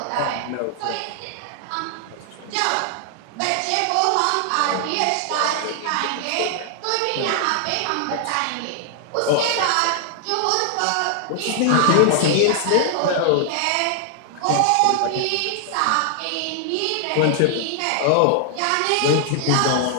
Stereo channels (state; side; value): different; both; correlation 0.00